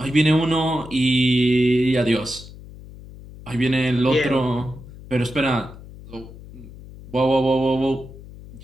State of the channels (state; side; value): noise; left; hum, 17 dB below the sound